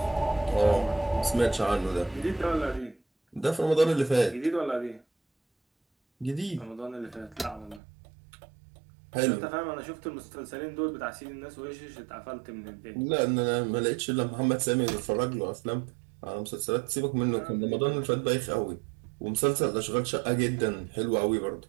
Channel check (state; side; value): drops out; left; at 7.8 s